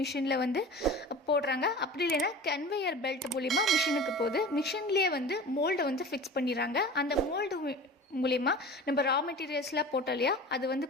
மிஷினில் வந்து போடுறாங்க. அப்படி இல்லைன்னா கன்வேயர் பெல்ட் மூலிமா மிஷினுக்கு போகுது. மிஷின்லேயே வந்து மோல்டை வந்து ஃபிக்ஸ் பண்ணிடுறாங்க. அந்த மோல்டு மூலிமா நம்ம ரா மெட்டீரியல்ஸ்லாம் போட்டோம் இல்லையா, அது வந்து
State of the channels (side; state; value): both; normal; correlation 0.37